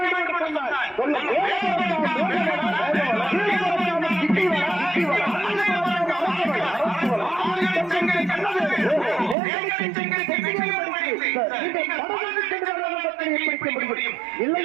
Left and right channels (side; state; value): left; drops out; at 9.3 s